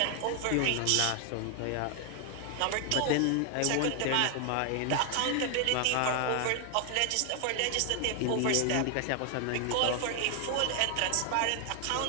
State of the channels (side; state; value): both; different; correlation 0.00